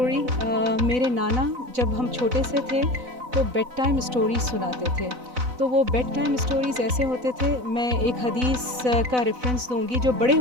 मेरे नाना जब हम छोटे से थे तो बेड टाइम स्टोरीज सुनाते थे। तो वो बेड टाइम स्टोरीज़ ऐसे होते थे, मैं एक हदीस का रेफरेंस दूंगी जो बड़े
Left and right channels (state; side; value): late; left; 4.0 ms